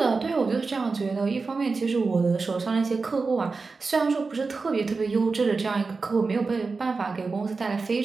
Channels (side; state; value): left; quieter; 4.2 dB